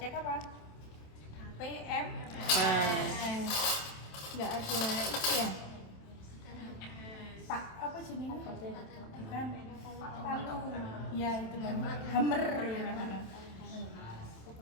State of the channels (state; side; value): late; right; 27 ms